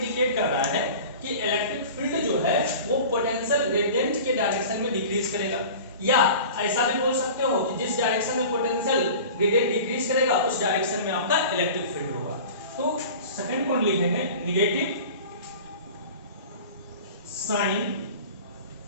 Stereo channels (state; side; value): inverted; both; correlation -0.39